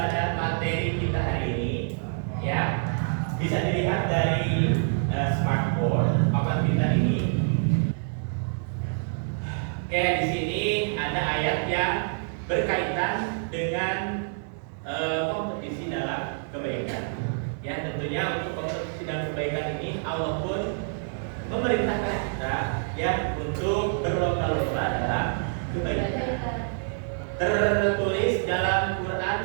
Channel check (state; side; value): silent; left; digital silence